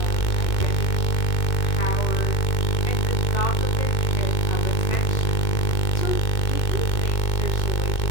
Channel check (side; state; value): right; late; 2.2 ms